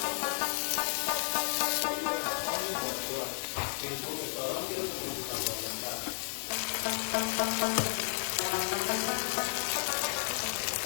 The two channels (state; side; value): silent; right; digital silence